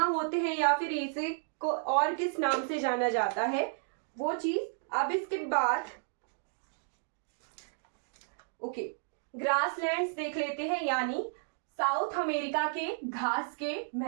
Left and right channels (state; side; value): silent; left; digital silence